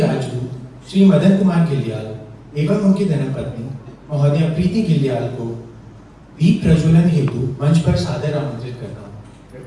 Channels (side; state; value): both; identical; correlation 1.00